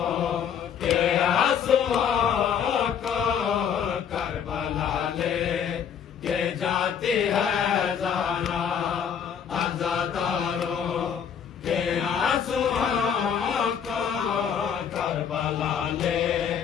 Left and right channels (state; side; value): quieter; right; 7.8 dB